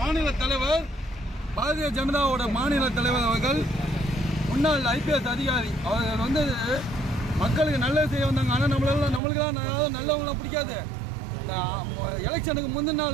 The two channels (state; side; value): drops out; left; at 9.2 s